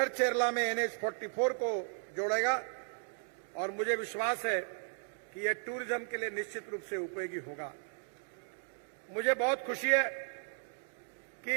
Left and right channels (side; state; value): left; silent; 54 dB below the other